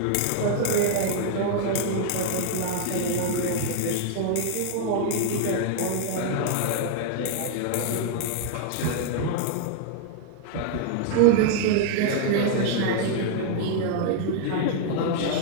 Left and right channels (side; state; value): both; different; correlation -0.01